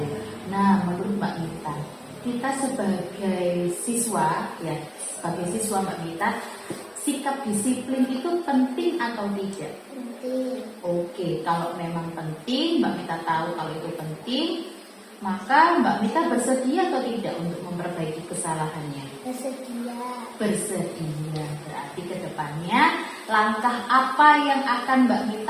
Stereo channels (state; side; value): identical; both; correlation 1.00